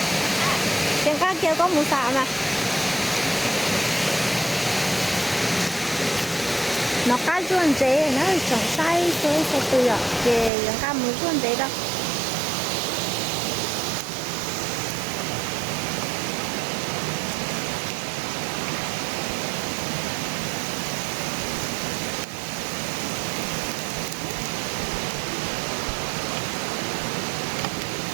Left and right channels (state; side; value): drops out; left; at 10.5 s